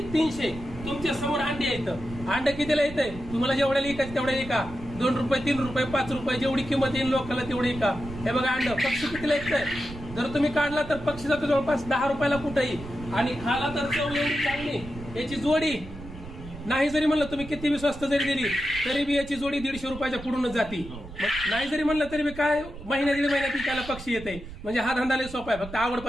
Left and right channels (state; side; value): noise; right; rumble, 13 dB below the sound